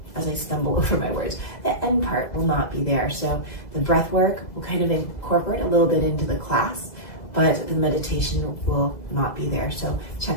as I stumble over my words. The end part will not be there. So the breath work will kind of incorporate a little bit into the class, but the meditation will not be there. So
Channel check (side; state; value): right; late; 2.0 ms